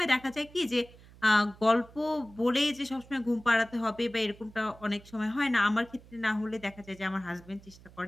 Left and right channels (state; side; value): noise; right; hum, 22 dB below the sound